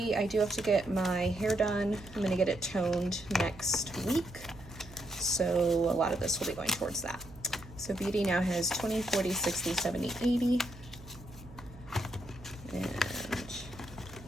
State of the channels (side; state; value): right; noise; hum, 18 dB below the sound